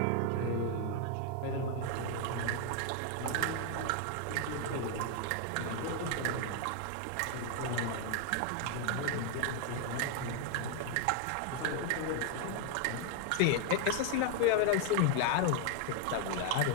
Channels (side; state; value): both; different; correlation 0.00